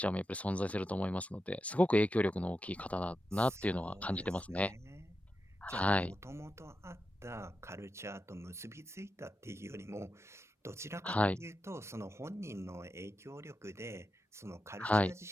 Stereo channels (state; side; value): normal; both; correlation 0.89